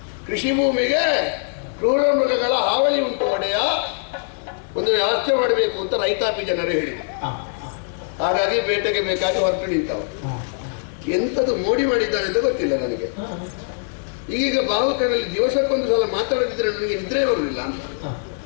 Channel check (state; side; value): silent; right; digital silence